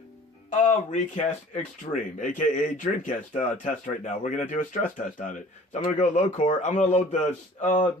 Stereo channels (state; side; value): normal; both; correlation 0.47